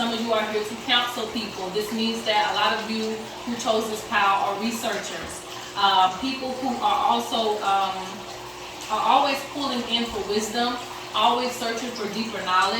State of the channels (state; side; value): identical; both; correlation 1.00